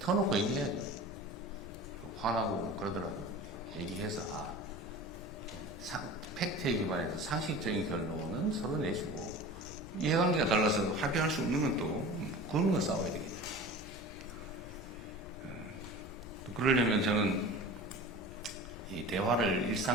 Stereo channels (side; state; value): left; noise; rumble, 16 dB below the sound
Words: 얘기해야죠. 화나고 뭐 그러더라도 얘기해서 팩트에 기반해서 상식적인 결론은 서로 내주고, 이해관계가 달라서 합의할 수 없는 건 또 그런 건 싸워야 되겠죠. 또 그러려면 저는 이 대화를